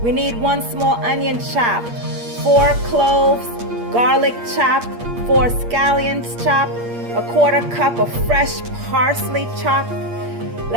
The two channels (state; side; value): late; left; 8.5 ms